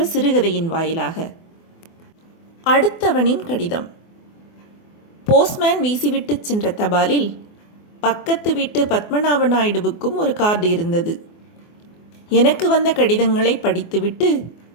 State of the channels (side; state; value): right; late; 24 ms